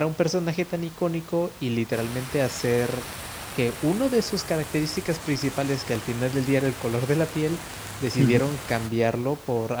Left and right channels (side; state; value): both; identical; correlation 1.00